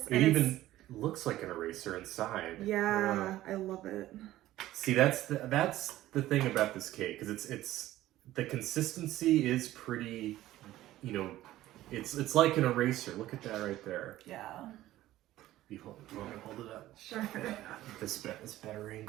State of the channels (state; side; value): quieter; left; 15.1 dB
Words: It even looks like an eraser inside. Yeah, I love it. See, that's the thing about this cake, because it's the consistency is pretty, you know, it's like an eraser. Look at that right there. Yeah. You want to hold it up? Sure. This better